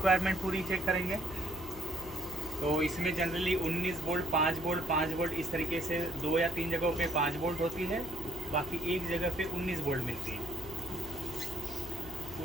पूरी चेक करेंगे। तो इसमें जनरली 19 वोल्ट 5 वोल्ट 5 वोल्ट इस तरीके से 2 या 3 जगहों पे 5 वोल्ट होती है, बाकी एक जगह पे 19 वोल्ट मिलती है।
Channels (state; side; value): noise; left; hum, 15 dB below the sound